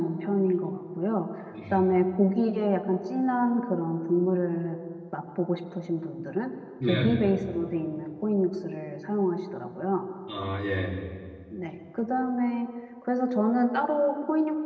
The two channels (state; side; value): identical; both; correlation 1.00